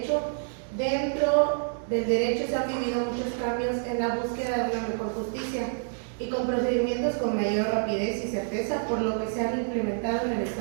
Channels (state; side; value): silent; left; digital silence